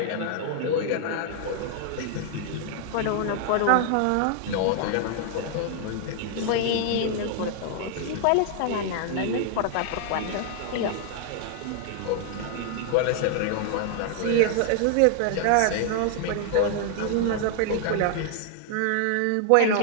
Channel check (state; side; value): different; both; correlation 0.00